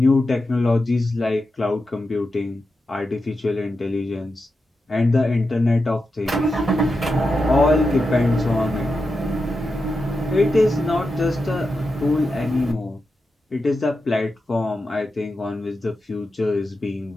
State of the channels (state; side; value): normal; both; correlation 0.89